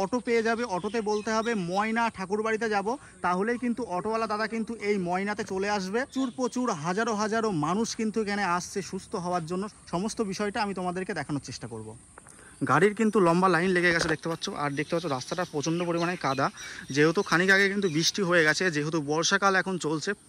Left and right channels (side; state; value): both; identical; correlation 1.00